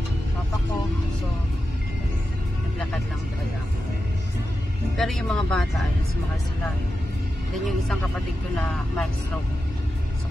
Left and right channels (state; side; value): normal; both; correlation 0.90